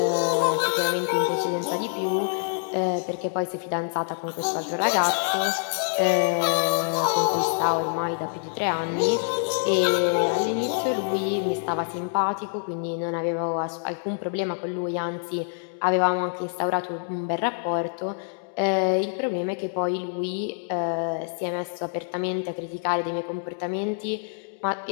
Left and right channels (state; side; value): silent; right; digital silence